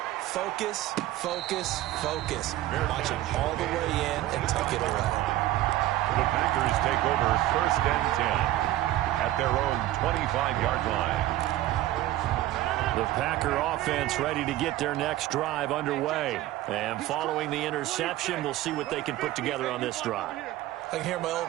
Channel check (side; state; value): left; quieter; 15.1 dB